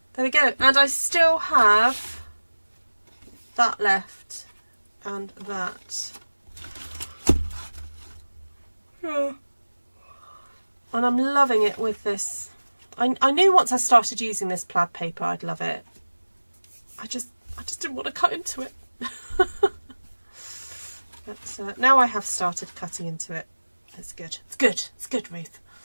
There we go. And I still have that left and that. Yeah. And I'm loving it with this. I knew once I started using this plaid paper I'd love it. I just didn't want to cut into it. But now I have started cutting into it. It's good. It's good. It's good, Ruth.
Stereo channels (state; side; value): inverted; both; correlation -1.00